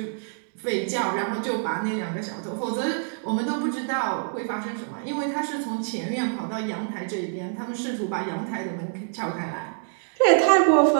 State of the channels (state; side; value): silent; left; digital silence